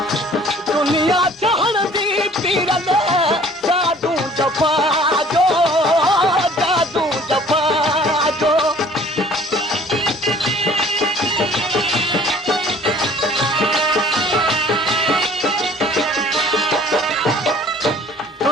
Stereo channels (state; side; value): normal; both; correlation 0.52